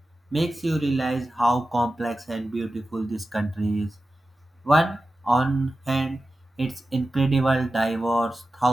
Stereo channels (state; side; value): normal; both; correlation 0.93